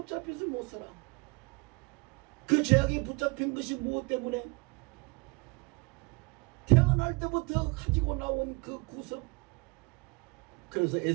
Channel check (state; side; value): quieter; left; 28.3 dB